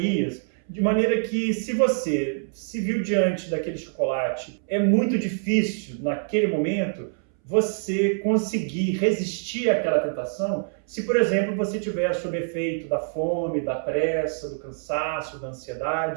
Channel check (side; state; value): left; silent; 62 dB below the other